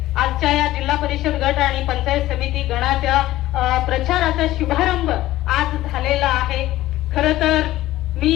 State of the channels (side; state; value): right; quieter; 15.6 dB